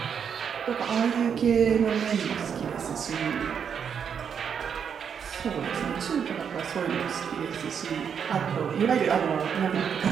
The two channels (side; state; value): left; quieter; 7.4 dB